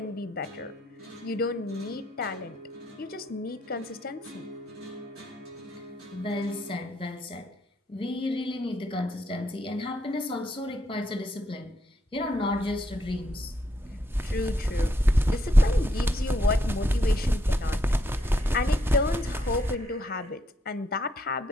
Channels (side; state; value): both; normal; correlation 0.75